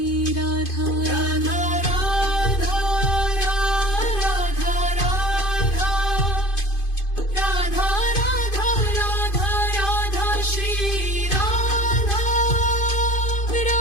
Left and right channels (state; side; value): late; right; 2.5 ms